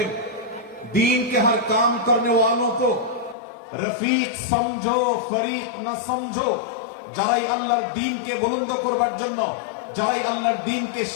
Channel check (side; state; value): right; drops out; at 3.4 s